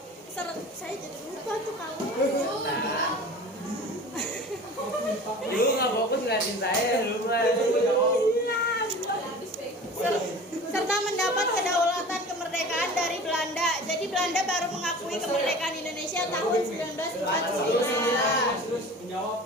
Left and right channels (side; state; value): both; normal; correlation 0.39